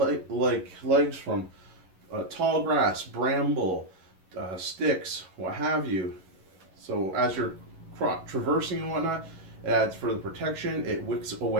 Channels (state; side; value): late; left; 11 ms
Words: from tall grass, bramble, sticks, what have you. So as you're traversing and whatnot, it adds further protection. It wicks